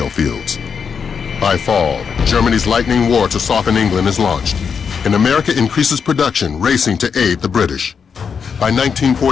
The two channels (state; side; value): quieter; right; 6.4 dB